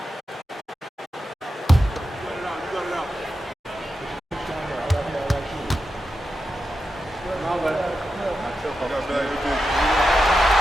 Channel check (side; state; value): both; normal; correlation 0.89